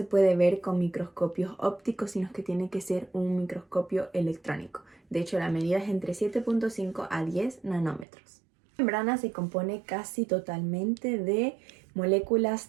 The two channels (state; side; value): drops out; left; at 8.1 s